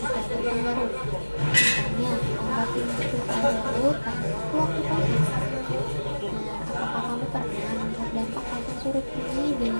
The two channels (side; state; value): both; inverted; correlation -1.00